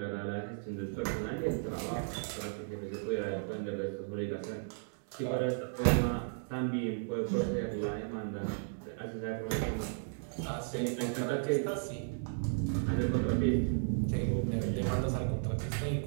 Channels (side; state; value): left; silent; digital silence